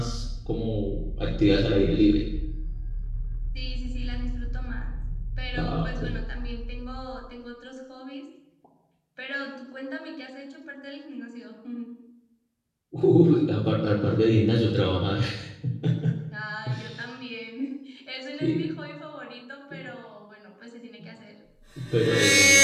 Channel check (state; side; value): identical; both; correlation 1.00